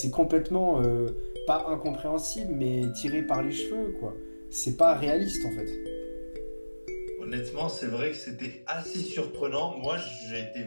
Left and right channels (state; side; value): inverted; both; correlation -1.00